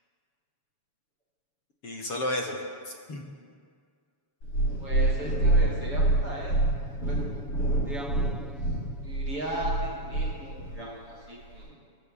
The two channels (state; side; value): late; right; 7.1 ms